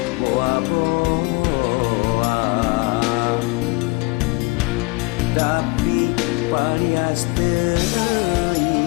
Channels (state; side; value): quieter; right; 25.9 dB